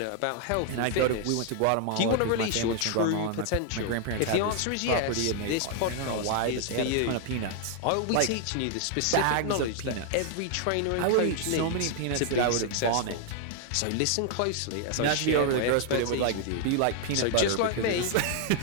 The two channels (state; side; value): different; both; correlation 0.00